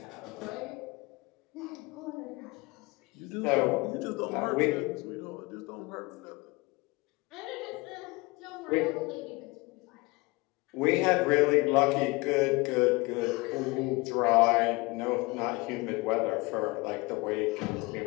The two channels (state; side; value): quieter; right; 24.7 dB